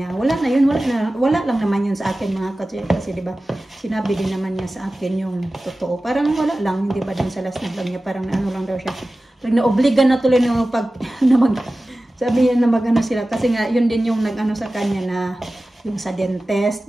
Wala na yun, wala lang naman yun sa akin mga kasi diba, sinabi din naman niya sa akin yung totoo. Parang wala lang, hindi ba din sa last na vlog niya, parang ano lang daw siya. Naobligan na tuloy na sabi niya na magano sila kasi nga yun din yung nag-ano sa kanya na yung sa dentist,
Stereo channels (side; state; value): both; normal; correlation 0.96